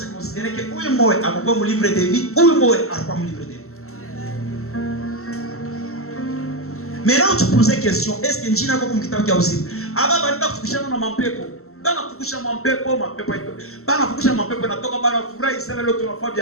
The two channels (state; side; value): late; right; 0.63 ms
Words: considéré que huyu moyo akakuwa mu livre de vie, huyu moyo akakuwa mu livre de vie. Maintenant tu poses question, est-ce que njina kwa mkitabu cha uzima aba banda kufukushana na mapepo bana kufukusha mapepo ito bana kufukusha mapepo natoka bana furahi sana leo